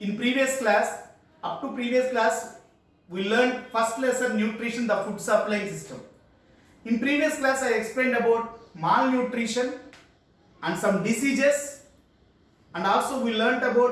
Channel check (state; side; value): identical; both; correlation 1.00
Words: In previous class, we learned first lesson nutrition, the food supplying system. In previous class I explained about malnutrition and some diseases, and also we learnt